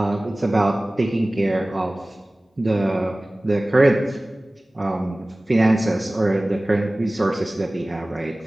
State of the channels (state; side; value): normal; both; correlation 0.98